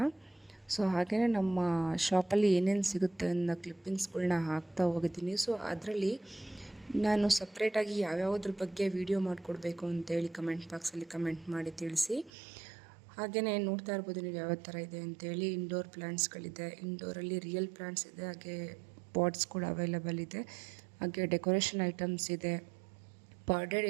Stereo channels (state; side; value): drops out; left; at 12.3 s